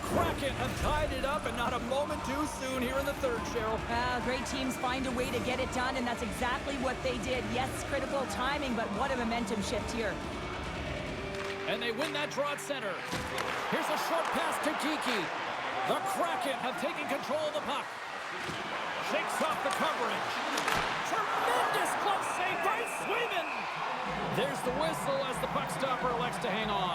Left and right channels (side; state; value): both; identical; correlation 1.00